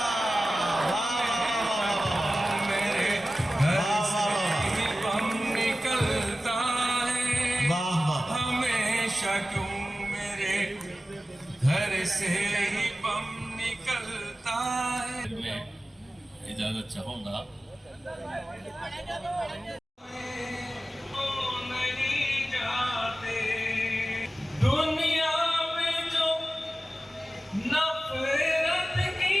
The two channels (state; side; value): normal; both; correlation 0.95